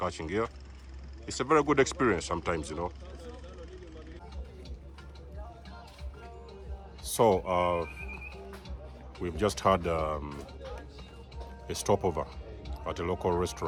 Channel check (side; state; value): both; identical; correlation 1.00